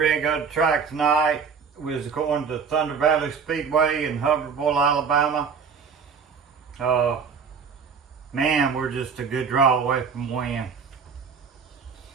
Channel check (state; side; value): quieter; left; 6.0 dB